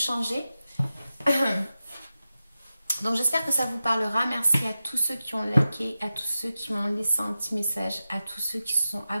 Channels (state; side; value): inverted; both; correlation -0.93